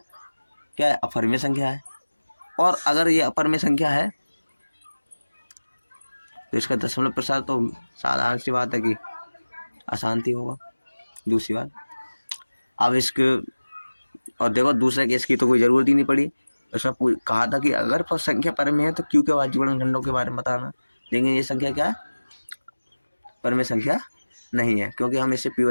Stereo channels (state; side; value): inverted; both; correlation -1.00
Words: क्या है, अपरिमेय संख्या है। और अगर ये अपरिमेय संख्या है तो इसका दशमलव प्रसार तो साधारण सी बात है कि अशांति होगा। दूसरी बात, अब इसके, और देखो दूसरे केस की तो कोई ज़रूरत ही नहीं पड़ी, उसमें कहा था कि अगर संख्या परमेय है तो क्यू के अभाज्य गुणनखंडों के बारे में बताना। लेकिन ये संख्या क्या है, परमेय संख्या नहीं है, क्योंकि हम इसे पी